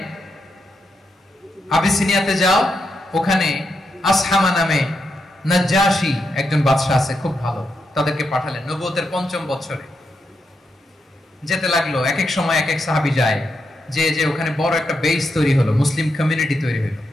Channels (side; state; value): both; normal; correlation 0.83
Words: আবিসিনিয়াতে যাও, ওখানে আসহামা নামে নাজ্জাশী একজন বাদশা আছে, খুব ভালো। তাদেরকে পাঠালেন নবুয়তের 5ম বছরে। যেতে লাগলো, এক এক সময় এক এক সাহাবী যায়, যে যে ওখানে বড় একটা বেস তৈরি হলো, মুসলিম কমিউনিটি তৈরি হলো।